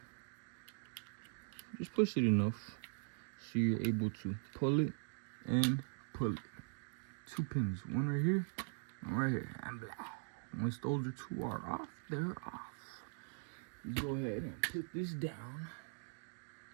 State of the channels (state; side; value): silent; left; digital silence